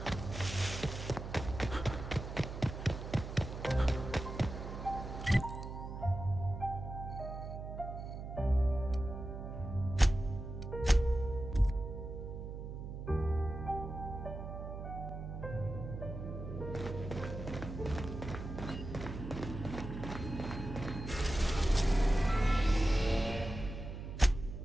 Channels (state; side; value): noise; right; hum, 8 dB below the sound